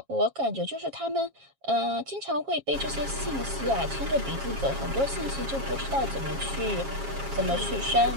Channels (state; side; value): late; left; 7.3 ms